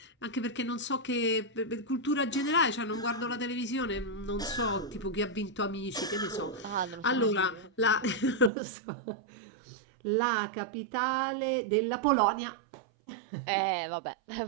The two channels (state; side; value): drops out; left; at 8.5 s